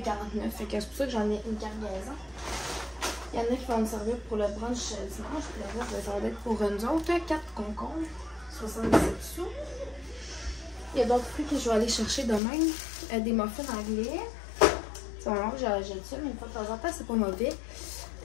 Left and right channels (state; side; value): drops out; right; at 12.4 s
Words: 49, fait que c'est pour ça que j'en ai une cargaison. Il y en a qui vont me servir pour le brunch dimanche, puis le reste, ça va être pour nous autres. 4 concombres, 77 sous. Il y a d'autres fruits que je vais aller chercher demain. Des muffins anglais. C'est vraiment que j'achète ça, mais une fois de temps en temps, c'est pas mauvais.